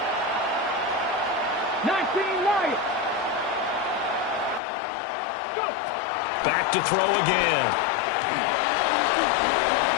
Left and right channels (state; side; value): drops out; right; at 4.6 s